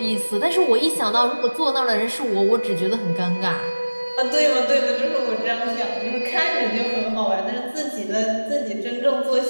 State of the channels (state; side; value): inverted; both; correlation -1.00